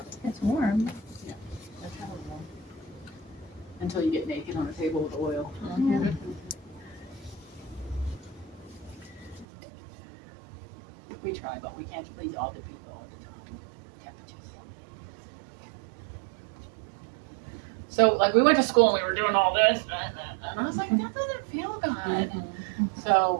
warm. That's kind of warm. Until you get naked on a table with oil. Yeah. We try, but we can't please all the people all the time. Temperatures. So, like, we went to school and we were doing all this, and I was like, that doesn't feel good.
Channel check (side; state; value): left; drops out; at 9.5 s